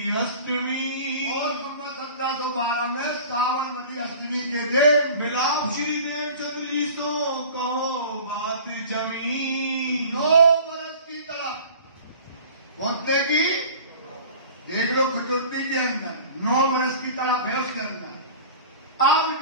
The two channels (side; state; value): both; inverted; correlation -0.42